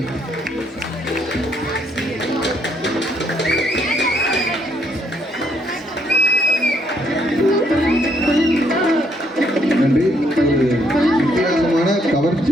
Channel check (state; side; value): normal; both; correlation 0.71